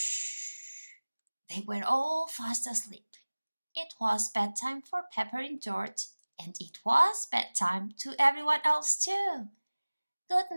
They were all fast asleep. It was bedtime for Pepper and George, and it was bedtime to everyone else too. "Good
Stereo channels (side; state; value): both; inverted; correlation -1.00